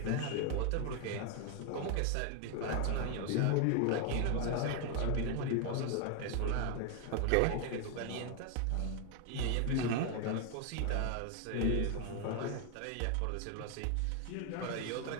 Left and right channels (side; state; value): both; different; correlation 0.01